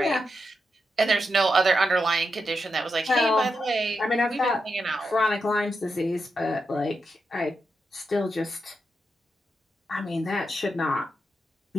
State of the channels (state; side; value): normal; both; correlation 0.86